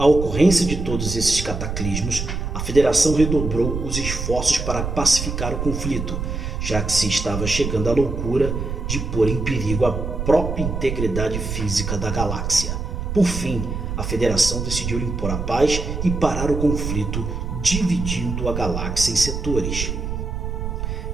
ocorrência de todos esses cataclismos, a Federação redobrou os esforços para pacificar o conflito, já que se estava chegando à loucura de pôr em perigo a própria integridade física da galáxia. Por fim, a Federação decidiu impor a paz e parar o conflito, dividindo a galáxia em setores.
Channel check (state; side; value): noise; right; rumble, 4 dB below the sound